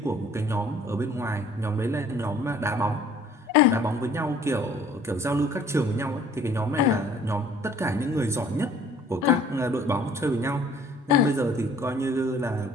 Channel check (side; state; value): both; normal; correlation 0.54